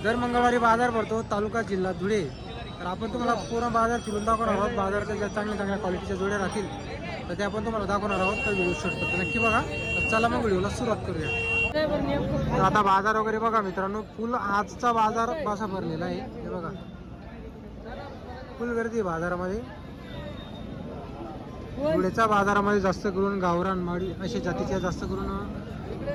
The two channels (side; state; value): both; identical; correlation 1.00